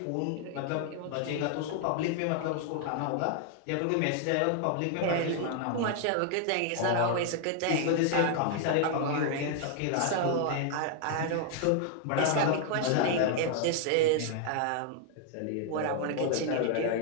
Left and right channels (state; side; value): different; both; correlation 0.00